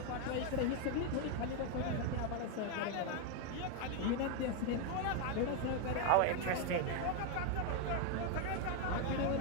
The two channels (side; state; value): both; different; correlation 0.01